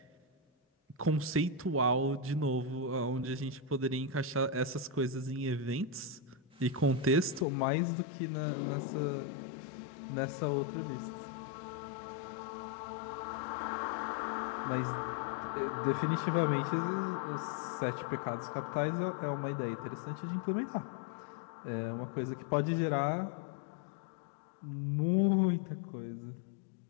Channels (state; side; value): drops out; right; at 7.5 s